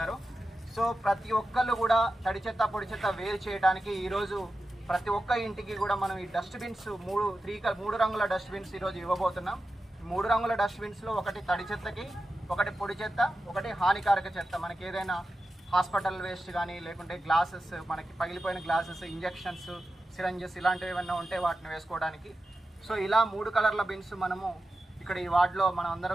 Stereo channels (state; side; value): normal; both; correlation 0.91